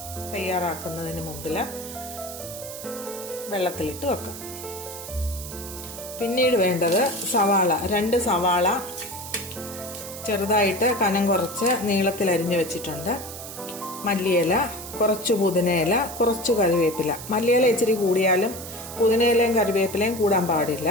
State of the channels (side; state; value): right; noise; hiss, 11 dB below the sound